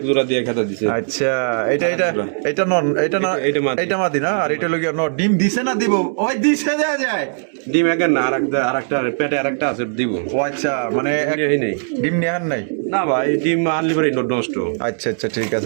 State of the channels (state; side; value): silent; left; 67 dB below the other